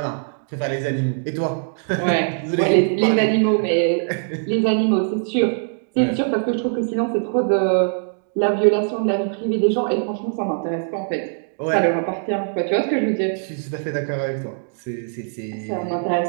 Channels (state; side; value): silent; left; digital silence